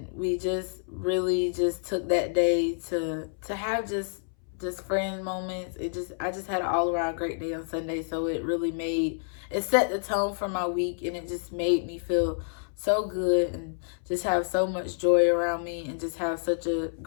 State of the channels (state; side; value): silent; right; 59 dB below the other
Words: we just really just took that day to have just friend moments. I just had an all around great day on Sunday. So it set the tone for my week, and it just made me feel so good and just have so much joy around me and just have such a